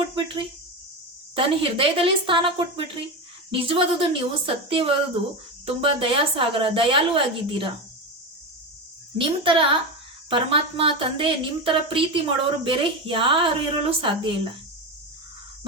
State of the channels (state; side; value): normal; both; correlation 0.18